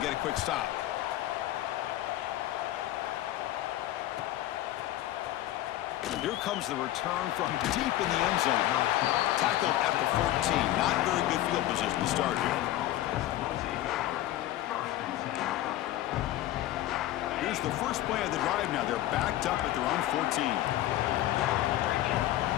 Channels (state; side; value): quieter; right; 14.5 dB